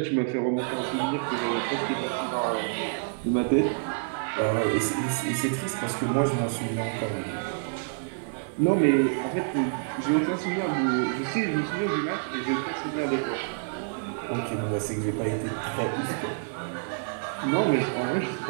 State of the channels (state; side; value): silent; left; digital silence